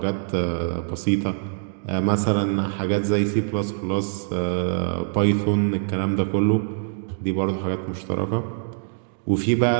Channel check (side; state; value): left; silent; digital silence